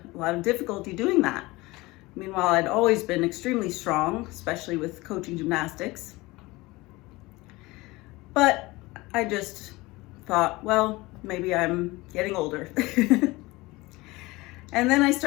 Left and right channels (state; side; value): quieter; right; 21.5 dB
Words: a lot of difficulty doing that. Meanwhile, I'd always been extremely strong, especially with coaching gymnastics. But I just thought, well, maybe I'm getting older. And then I